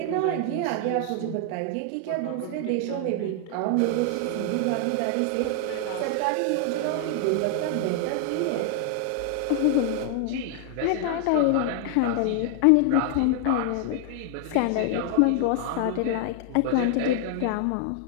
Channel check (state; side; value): different; both; correlation 0.00